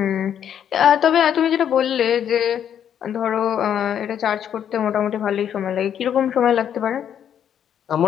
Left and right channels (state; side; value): quieter; right; 9.2 dB